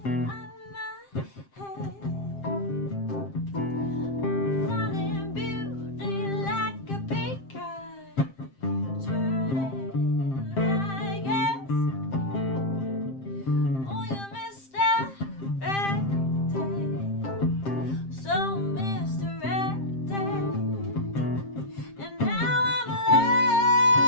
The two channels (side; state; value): right; late; 7.6 ms